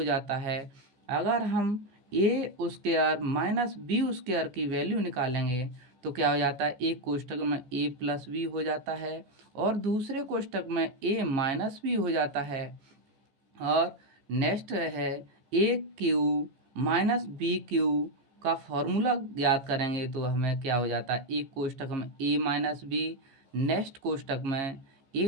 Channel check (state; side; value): late; left; 15 ms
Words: जाता है। अगर हम a square minus B square की वैल्यू निकालेंगे तो क्या हो जाता है, एक कोष्ठक में a प्लस बी हो जाता है और दूसरे कोष्ठक में a माइनस बी हो जाता है। और नेक्स्ट है a cube minus B cube का फॉर्मूला ज्ञात करेंगे तो हमें क्या हो जाता है, एक कोष्ठक में a माइनस बी, नेक्स्ट कोष्ठक में